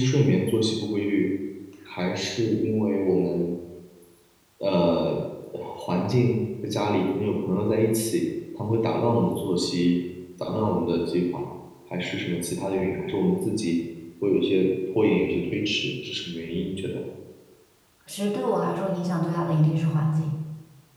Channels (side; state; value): both; identical; correlation 1.00